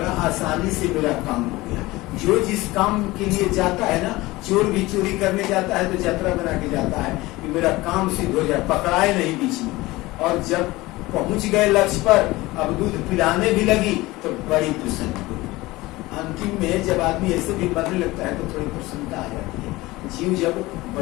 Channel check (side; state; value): right; quieter; 19.9 dB